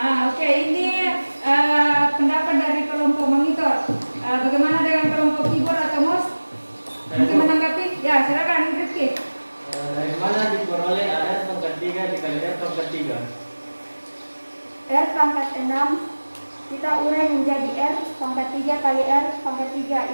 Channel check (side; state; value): both; inverted; correlation -1.00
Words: Oke, ini pendapat dari kelompok monitor. Bagaimana dengan kelompok keyboard atau mouse? Mungkin menanggapi? Ya, silakan Rifki. Dari mana diperoleh AR pangkat 3 dikali R pangkat 3? R pangkat 6 kita urai menjadi R pangkat 3 kali R pangkat